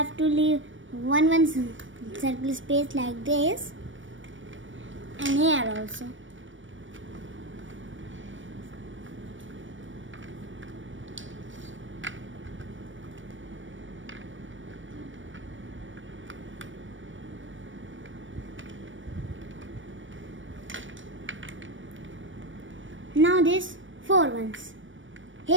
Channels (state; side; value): late; left; 0.56 ms